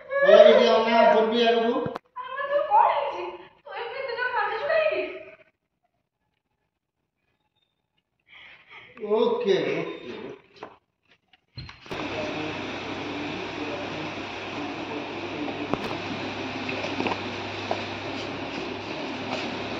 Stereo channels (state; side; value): identical; both; correlation 1.00